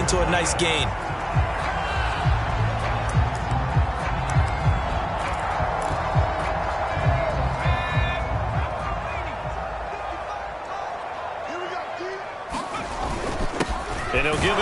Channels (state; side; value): identical; both; correlation 1.00